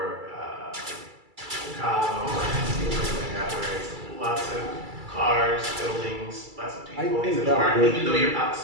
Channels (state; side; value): late; left; 2.3 ms